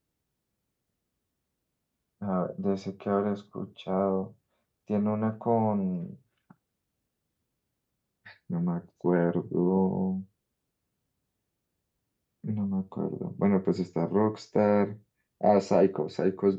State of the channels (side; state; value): both; identical; correlation 1.00